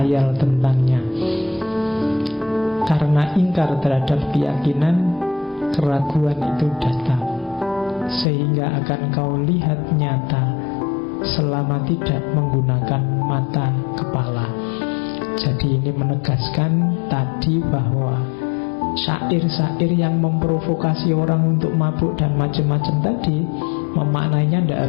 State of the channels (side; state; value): right; drops out; at 8.2 s